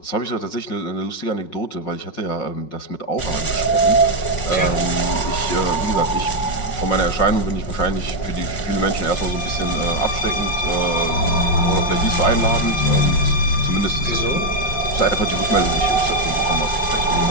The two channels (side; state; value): right; late; 5.5 ms